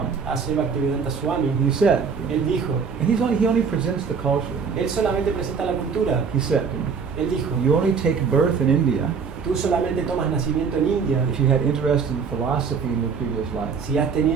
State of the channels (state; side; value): quieter; left; 5.9 dB